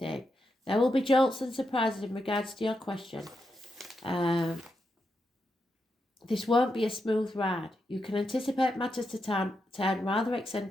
There will be jolts and surprises in regards to your question. This won't be a smooth ride. You can anticipate matters to turn rather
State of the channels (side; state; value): both; normal; correlation 0.85